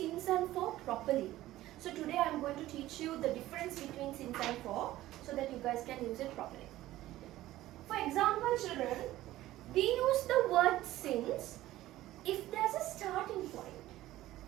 and for properly. So today I am going to teach you the difference between since and for so that you guys can use it properly. For example, children, we use the word since if there's a starting point.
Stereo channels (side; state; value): left; quieter; 15.5 dB